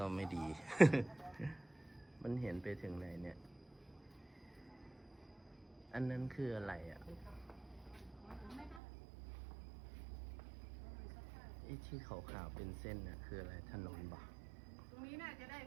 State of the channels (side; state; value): left; drops out; at 8.8 s